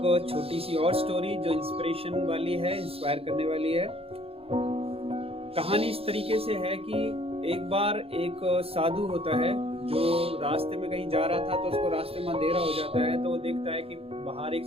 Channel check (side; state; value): left; late; 0.28 ms